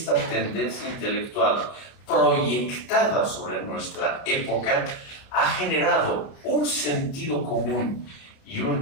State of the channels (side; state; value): right; late; 30 ms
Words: tendencia intelectual proyectada sobre nuestra época ha generado un sentido común y